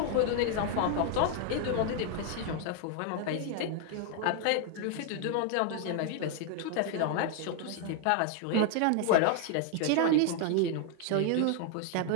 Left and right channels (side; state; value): both; different; correlation 0.00